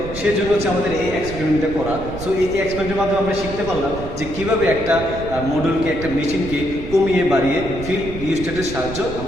সেই জন্য হচ্ছে আমাদের এই এক্সপেরিমেন্টটা করা। সো এই এক্সপেরিমেন্টের মাধ্যমে আমরা শিখতে পারলাম যে কীভাবে একটা মডিউলকে, একটা মেশিনকে কমিয়ে বাড়িয়ে ফিল্ড রিস্টারের সাহায্য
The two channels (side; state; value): right; noise; rumble, 11 dB below the sound